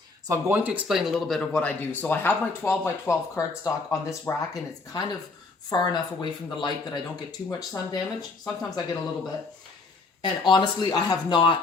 So I'm going to explain a little bit of what I do. So I have my 12 by 12 cardstock on this rack, and it's kind of far enough away from the light that I don't get too much sun damage. Sometimes I get a little bit. And honestly, I have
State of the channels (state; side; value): quieter; right; 3.9 dB